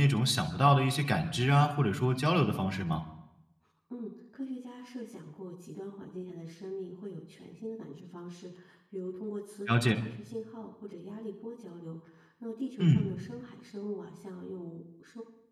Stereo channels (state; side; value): identical; both; correlation 1.00